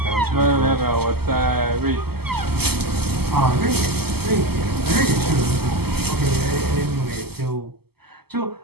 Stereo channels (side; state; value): left; late; 0.96 ms